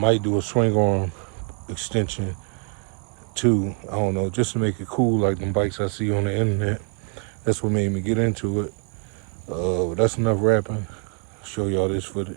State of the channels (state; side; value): quieter; left; 39.1 dB